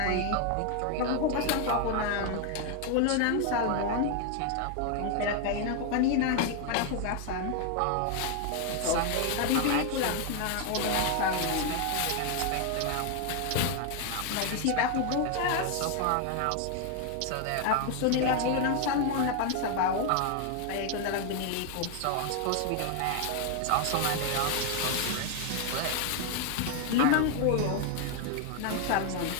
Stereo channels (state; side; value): different; both; correlation 0.00